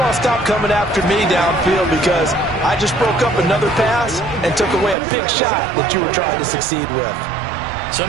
to stop coming after me downfield because I just broke up another pass and took away a big shot that you were trying to succeed with. So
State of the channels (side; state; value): left; drops out; at 5.0 s